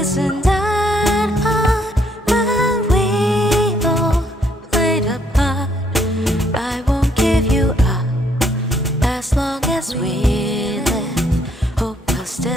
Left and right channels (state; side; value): normal; both; correlation 0.69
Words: that hard when we all played a part. I won't give you up as long as we live. Hope will